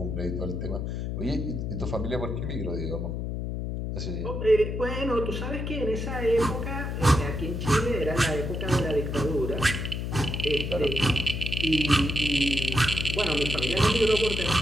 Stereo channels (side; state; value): left; noise; hum, 3 dB below the sound